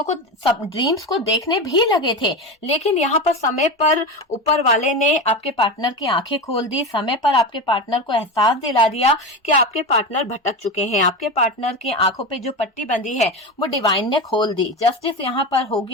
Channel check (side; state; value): both; normal; correlation 0.22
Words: को, सब ड्रीम्स को देखने भी लगे थे, लेकिन यहाँ पर समय पर ऊपर वाले ने आपके पार्टनर की आंखें खोल दी, समय पर आपके पार्टनर को एहसास दिला दिया कि आपके पार्टनर भटक चुके हैं। आपके पार्टनर की आंखों पे जो पट्टी बंधी है वो डिवाइन ने खोल दी। जस्टिस यहाँ पर हो